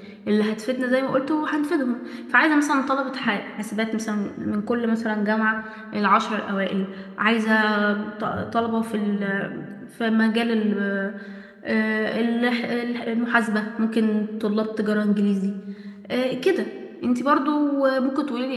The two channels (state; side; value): identical; both; correlation 1.00